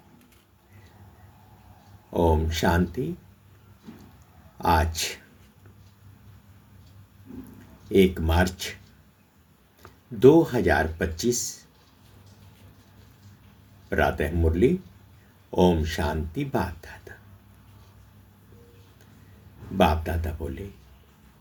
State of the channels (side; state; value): both; identical; correlation 1.00